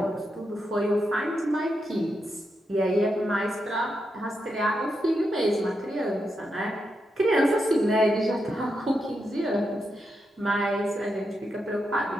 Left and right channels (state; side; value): normal; both; correlation 0.85